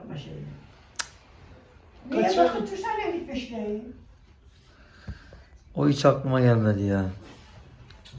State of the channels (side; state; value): both; identical; correlation 1.00